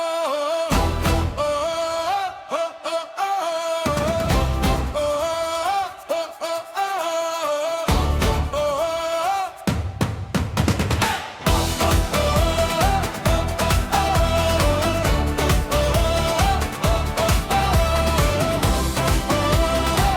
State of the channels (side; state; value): both; identical; correlation 1.00